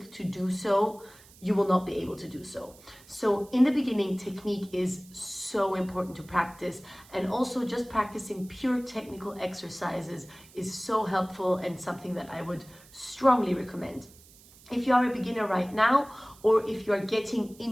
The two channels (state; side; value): noise; right; hiss, 24 dB below the sound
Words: to do so, you will not be able to do so. So in the beginning, technique is so important to practice, and also just practicing pure technical exercises is so helpful and something that I would strongly recommend. If you are a beginner right now, or if you are getting